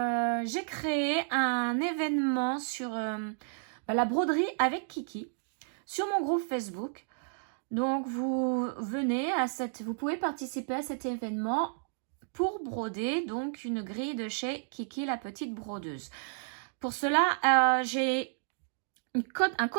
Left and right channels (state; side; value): silent; left; digital silence